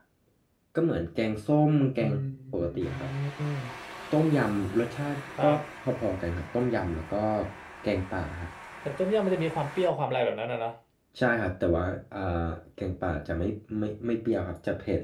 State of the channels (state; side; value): identical; both; correlation 1.00